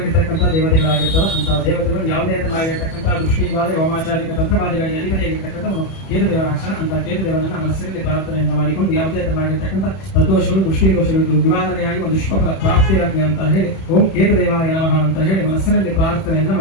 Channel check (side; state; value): right; late; 31 ms